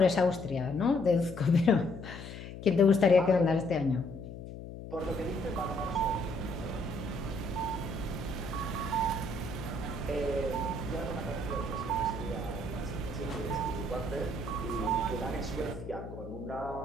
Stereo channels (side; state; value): left; noise; hum, 11 dB below the sound